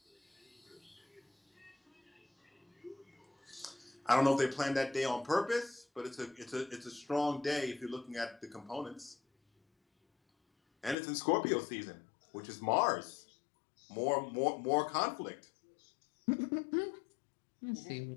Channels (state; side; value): drops out; right; at 11.0 s